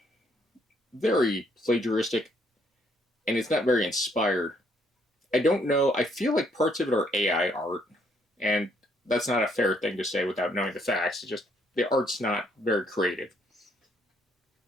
very plagiaristic, and it's not very inspired. I don't know. I feel like parts of it are AI art, and that's not a fair thing to say without knowing the facts. It's just the art's not very creative.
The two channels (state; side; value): normal; both; correlation 0.69